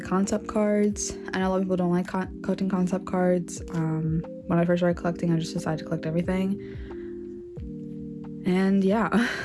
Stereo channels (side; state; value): both; identical; correlation 1.00